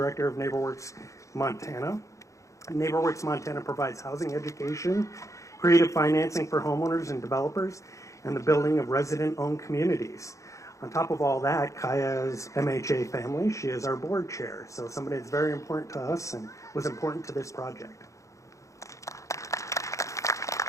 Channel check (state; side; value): late; right; 0.15 ms